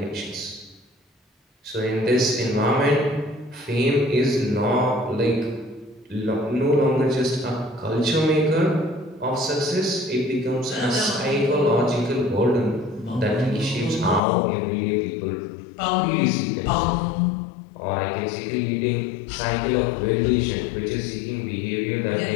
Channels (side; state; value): right; drops out; at 14.2 s